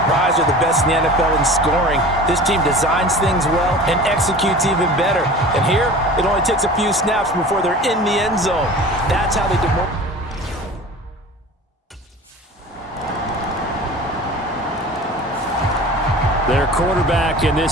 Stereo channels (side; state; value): both; normal; correlation 0.39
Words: they're the best in the NFL in scoring. This team designs things well and executes even better. And here, it only takes a few snaps before they're in the end zone. That's how they do more. Their quarterback in